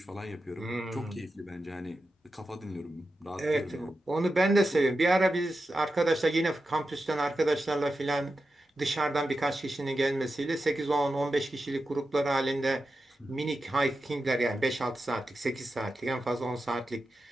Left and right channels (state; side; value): normal; both; correlation 0.90